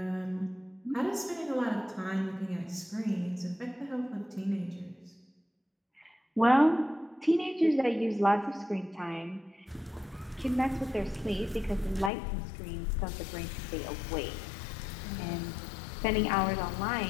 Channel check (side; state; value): right; drops out; at 12.1 s